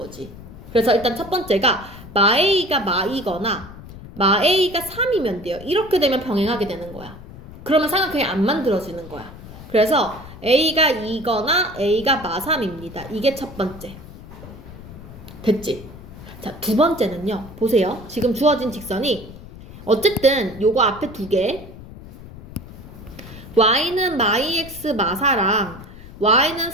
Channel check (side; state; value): left; noise; rumble, 16 dB below the sound